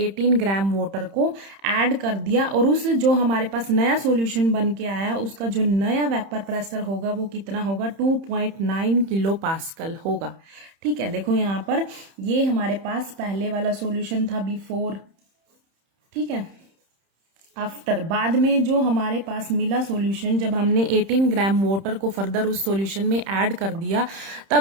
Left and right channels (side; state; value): left; late; 31 ms